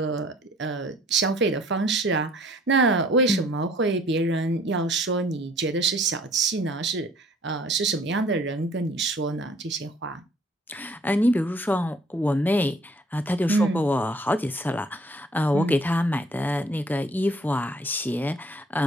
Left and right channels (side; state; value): both; normal; correlation 0.57